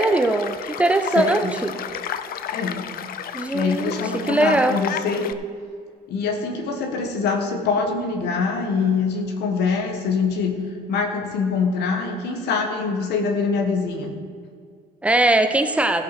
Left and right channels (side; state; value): both; normal; correlation 0.55